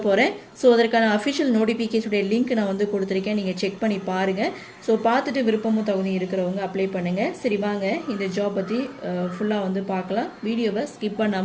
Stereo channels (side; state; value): both; identical; correlation 1.00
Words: போகிறேன். ஸோ அதற்கான அஃபிஷியல் நோட்டிஃபிகேஷனுடைய லிங்க் நான் வந்து கொடுத்துருக்கேன். நீங்கள் செக் பண்ணி பாருங்கள். ஸோ பார்த்துட்டு விருப்பமும் தகுதி இருக்கிறவங்க அப்ளை பண்ணுங்கள். சரி, வாங்க இந்த ஜாப் பற்றி ஃபுல்லாக வந்து பார்க்கலாம். வீடியோவை ஸ்கிப்